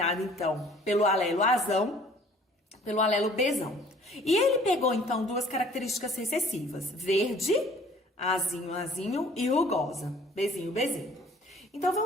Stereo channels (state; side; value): normal; both; correlation 0.54